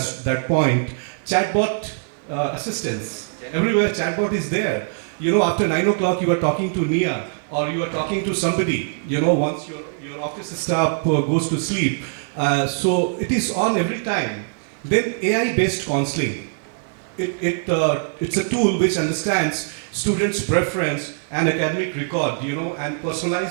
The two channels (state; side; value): silent; left; 55 dB below the other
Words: point, chatbot assistance. Everywhere chatbot is there. You know, after 9 o'clock you are talking to Nair, or you are talking to somebody, you know, once your office staff goes to sleep. So it is on every time. Then AI-based counseling. It's a tool which understands students' preference and academic record, you know, and